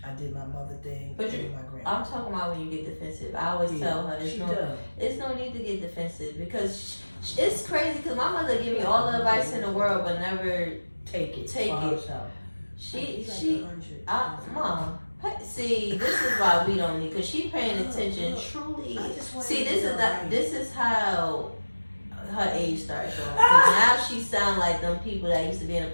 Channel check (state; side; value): inverted; both; correlation -1.00